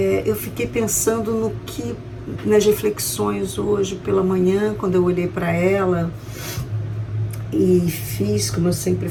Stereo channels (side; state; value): both; identical; correlation 1.00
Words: eu fiquei pensando nas reflexões hoje pela manhã, quando eu olhei para ela e fiz, como eu sempre